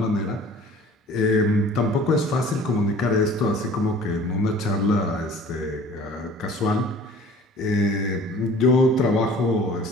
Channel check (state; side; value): normal; both; correlation 0.47